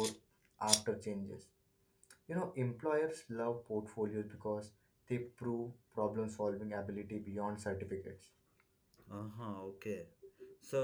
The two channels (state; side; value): identical; both; correlation 1.00